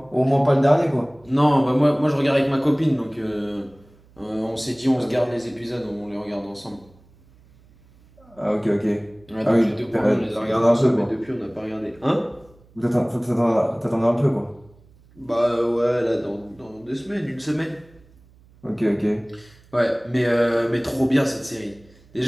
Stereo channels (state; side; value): noise; right; hum, 28 dB below the sound